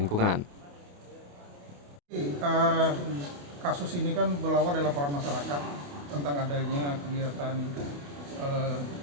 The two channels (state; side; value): late; left; 28 ms